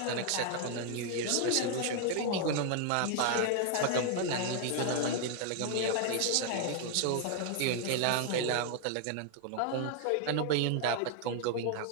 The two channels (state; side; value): different; both; correlation 0.00